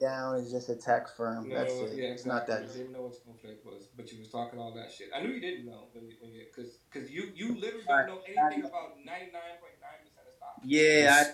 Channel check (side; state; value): both; identical; correlation 1.00